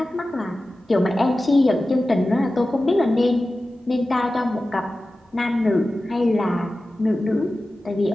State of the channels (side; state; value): both; normal; correlation 0.95